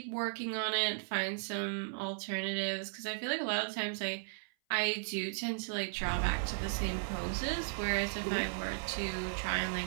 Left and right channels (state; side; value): silent; left; 54 dB below the other